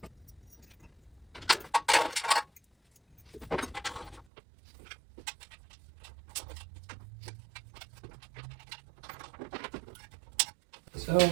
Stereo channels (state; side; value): drops out; left; at 4.2 s